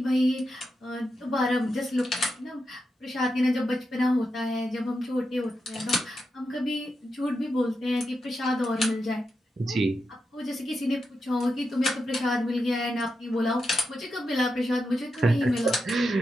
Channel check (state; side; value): normal; both; correlation 0.87